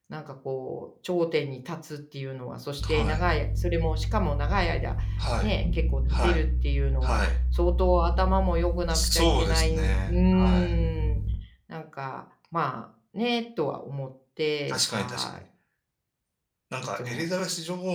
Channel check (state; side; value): identical; both; correlation 1.00